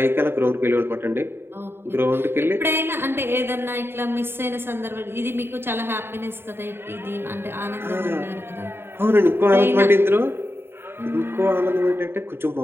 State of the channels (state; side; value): late; left; 0.11 ms